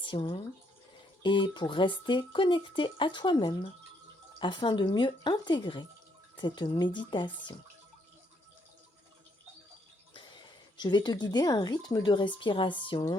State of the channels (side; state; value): both; normal; correlation 0.72